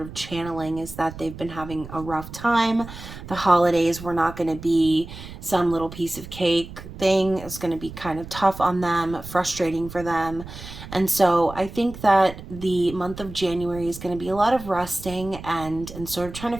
of channeling is that they've been having a rough time. The holidays were not going to be some little piece of cake thing. It's going to be kind of tough on them, frustrating for them. And so I think that the month of January is going to be a lot of resting and sort of trying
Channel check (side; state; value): right; noise; rumble, 13 dB below the sound